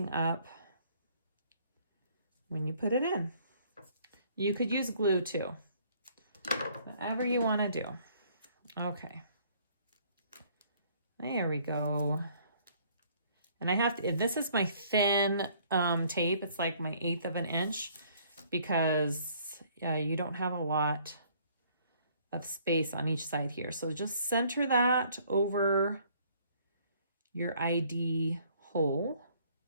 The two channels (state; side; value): inverted; both; correlation -0.61